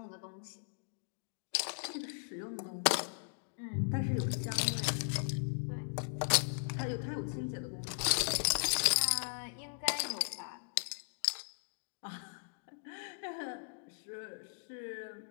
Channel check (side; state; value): right; silent; digital silence